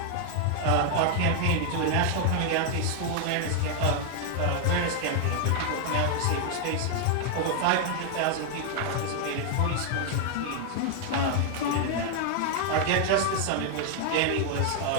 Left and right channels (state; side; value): different; both; correlation 0.00